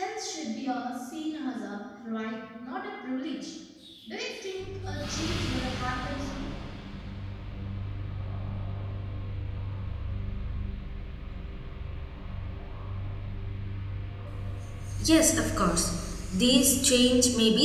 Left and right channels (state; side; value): identical; both; correlation 1.00